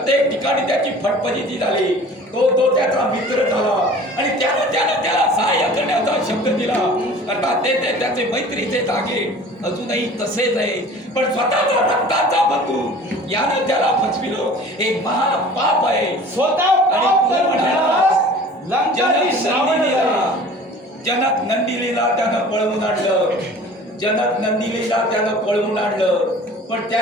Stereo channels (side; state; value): both; normal; correlation 0.45